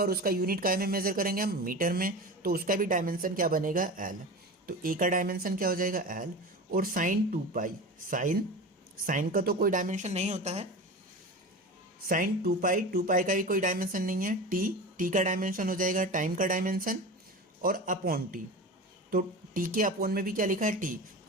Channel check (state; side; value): normal; both; correlation 0.30